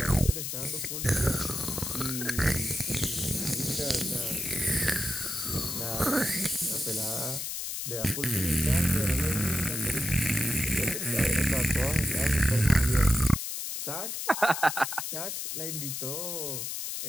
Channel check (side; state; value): left; noise; hiss, 4 dB below the sound